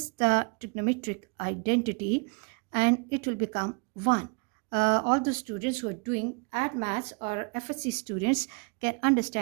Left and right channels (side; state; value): left; quieter; 34.5 dB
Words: the trigonometric identity, and it will become 1. All the students who are doing add maths or FSC students can